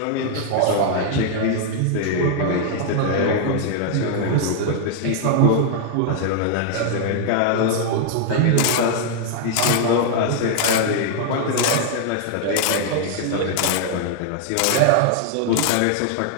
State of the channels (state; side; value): different; both; correlation 0.00